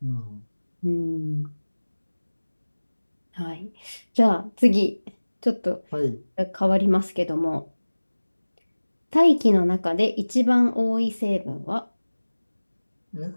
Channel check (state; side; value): inverted; both; correlation -1.00